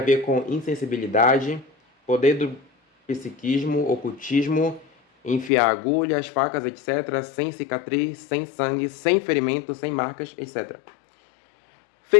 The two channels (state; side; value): drops out; right; at 5.5 s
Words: ver com insensibilidade, poder do psiquismo, ocultismo, enfiar agulhas, facas, etc., sem cicatriz, sem sangue, sem ferimento, sem marcas, etc.